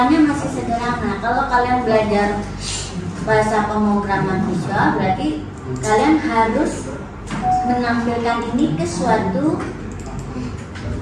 masih sederhana. Kalau kalian belajar bahasa pemrograman visual, berarti kalian harus menampilkan ini ke suatu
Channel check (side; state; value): both; identical; correlation 1.00